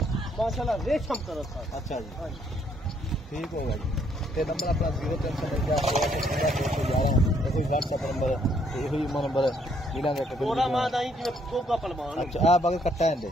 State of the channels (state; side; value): normal; both; correlation 0.69